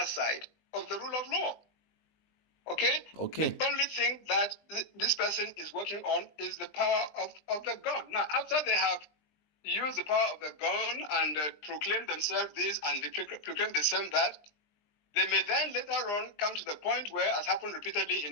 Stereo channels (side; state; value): right; late; 20 ms